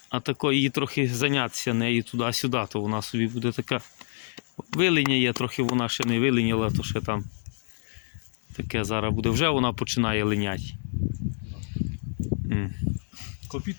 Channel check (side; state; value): right; silent; digital silence